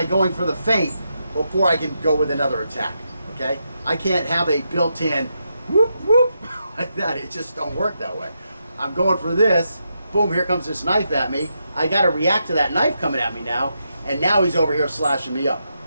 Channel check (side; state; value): both; inverted; correlation -0.83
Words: going for the feint before I can go with another attack, okay? I can't have a built-in whoop, whoop, like that. It just don't work that way. I'm going for this, boom, here comes this knife at me. I gotta react to that knife coming at me now, and now he's over here slashing me up.